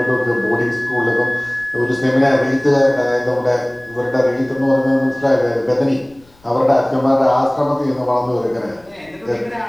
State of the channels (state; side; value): noise; left; rumble, 30 dB below the sound